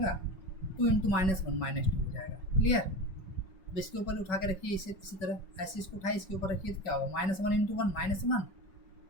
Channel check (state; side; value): late; right; 5.3 ms